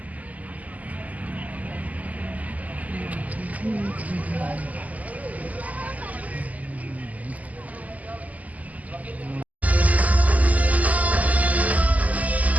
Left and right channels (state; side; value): late; left; 0.074 ms